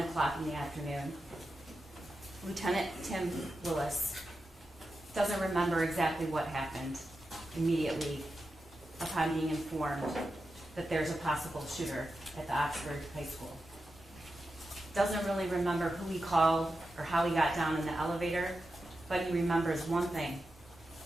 o'clock in the afternoon, Lieutenant Tim Willis doesn't remember exactly what happened immediately upon being informed that there's a possible shooter at the Oxford High School. Doesn't really remember who he called or how he got down in the elevator, but he remembers one thing.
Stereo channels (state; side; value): normal; both; correlation 0.90